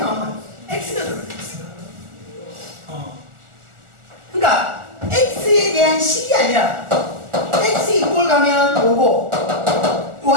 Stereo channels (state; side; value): late; left; 1.4 ms